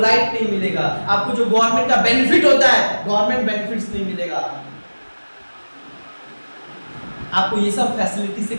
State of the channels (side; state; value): both; inverted; correlation -1.00